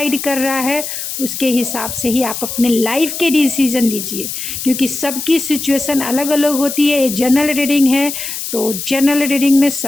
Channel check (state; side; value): noise; left; hiss, 6 dB below the sound